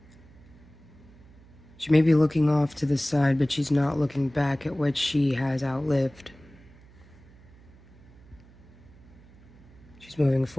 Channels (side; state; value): right; noise; hum, 24 dB below the sound